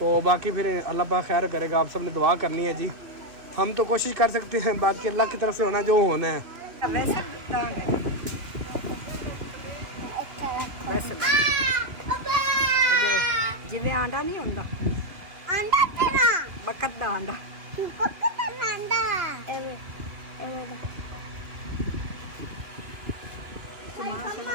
बाकी फिर अल्लाह पाक खैर करेगा, आप सब ने दुआ करनी है जी। हम तो कोशिश कर सकते हैं, बाकी अल्लाह की तरफ से होना जो होना है। जिवें आंडा नहीं होंदा अंडा तेरा बकत दा आंडा पक्का अंडा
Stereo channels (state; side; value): late; left; 3.0 ms